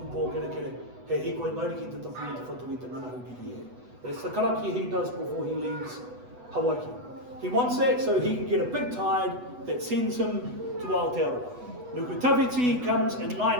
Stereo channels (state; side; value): late; left; 8.1 ms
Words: pō kere kere. He hikoi mauri ki te tawhi te whatu I te ngana hukiri e. That's the karakia he does before he leaves Hawaii. He wants that so he can get a big tide that sends him to Aotearoa. Nukutawiti comes in